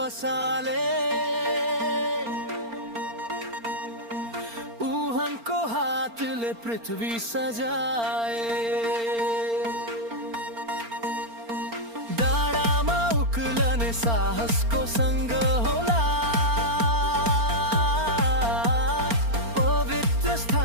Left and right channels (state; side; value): late; left; 4.4 ms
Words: उहाँको हातले पृथ्वी सजाए डाँडामा उक्लने साहसको सँग होला पवित्र